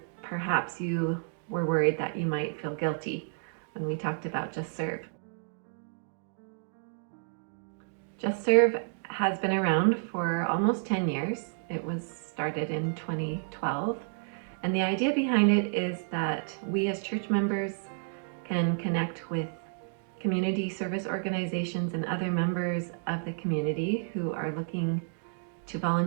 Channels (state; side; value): silent; left; digital silence